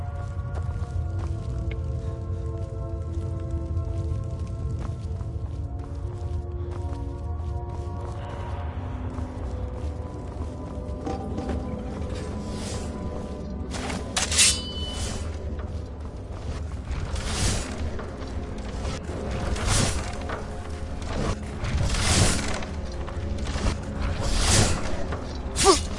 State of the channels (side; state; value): both; identical; correlation 1.00